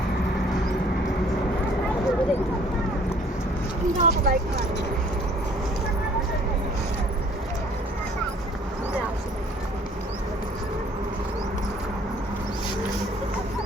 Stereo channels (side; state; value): both; normal; correlation 0.57